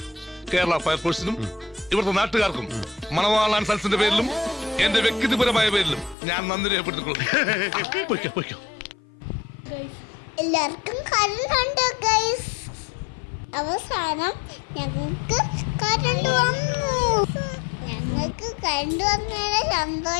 കേരള ഫയർഫോഴ്സിനും ഇവിടുത്തെ നാട്ടുകാർക്കും മണവാളാൻ സൽസിന്റെ പേരിലും എന്റെ വ്യക്തിപരമായ പേരിലും ഞാൻ നന്ദി രേഖപ്പെടുത്തിക്കൊള്ളുന്നു. എല്ലാവർക്കും കറണ്ട് ഗൈസ്. അവസാനം ഞങ്ങൾക്ക് കറണ്ട് വന്നതിന്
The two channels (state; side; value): drops out; right; at 6.2 s